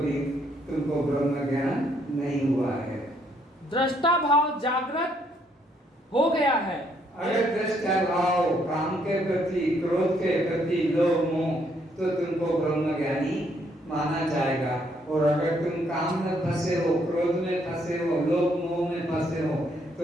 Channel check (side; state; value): both; normal; correlation 0.70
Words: तुमको ब्रह्म ज्ञान नहीं हुआ है। दृष्टा भाव जागृत हो गया है। अगर दृष्टा भाव काम के प्रति क्रोध के प्रति लोभ मोह तो तुमको ब्रह्म ज्ञानी माना जाएगा। और अगर तुम काम में फंसे हो, क्रोध में फंसे हो, लोभ मोह में फंसे हो